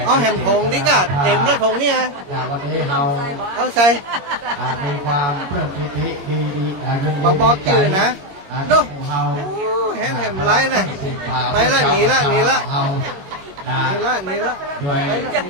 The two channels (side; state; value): left; late; 21 ms